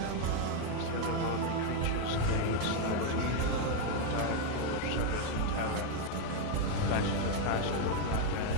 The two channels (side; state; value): both; different; correlation 0.01